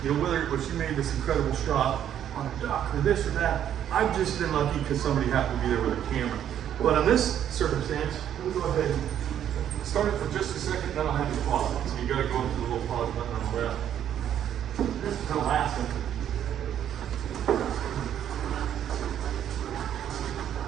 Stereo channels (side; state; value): left; quieter; 10.1 dB